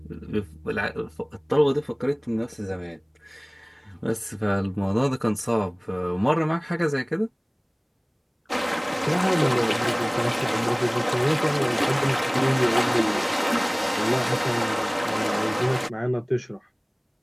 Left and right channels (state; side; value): identical; both; correlation 1.00